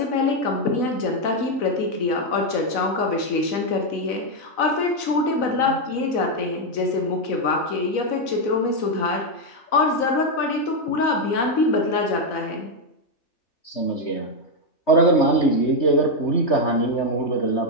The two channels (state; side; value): late; right; 4.0 ms